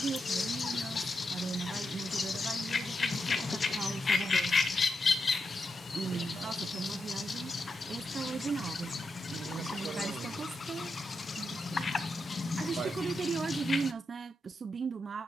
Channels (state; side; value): normal; both; correlation 0.86